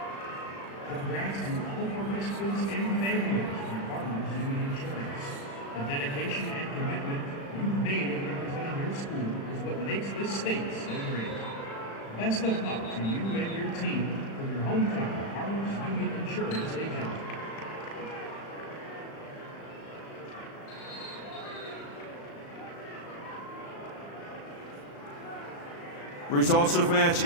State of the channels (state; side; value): late; right; 36 ms